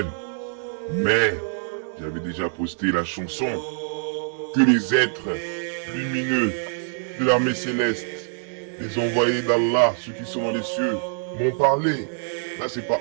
Mais, j'avais déjà posté la chanson que les êtres lumineux de l'armée céleste, les envoyés d'Allah, ceux qui sont dans les cieux, m'ont parlé. Là, c'est pas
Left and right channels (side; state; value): left; silent; 59 dB below the other